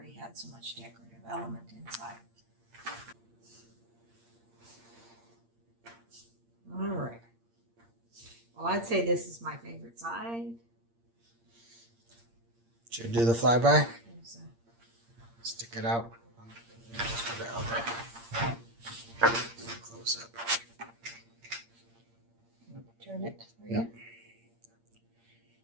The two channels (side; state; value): left; late; 8.7 ms